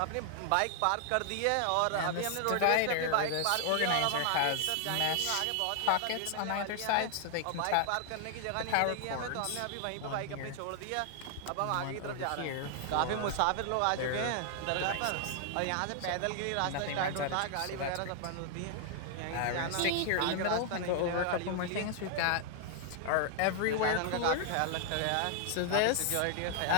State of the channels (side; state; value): both; different; correlation 0.00